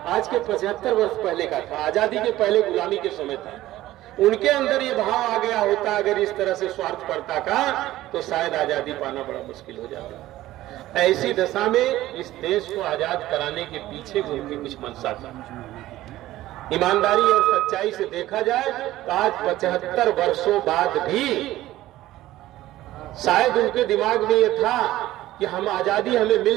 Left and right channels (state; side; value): quieter; left; 15.4 dB